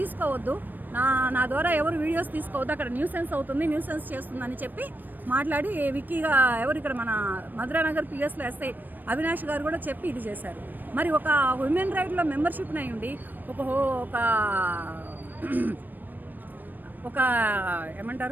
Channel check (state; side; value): late; left; 0.090 ms